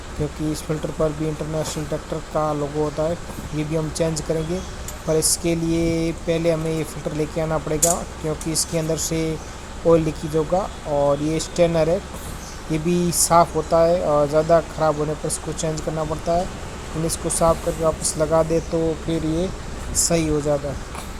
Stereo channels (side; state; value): both; identical; correlation 1.00